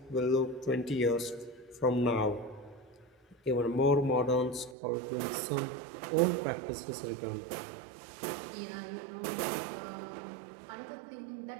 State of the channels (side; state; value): left; drops out; at 4.8 s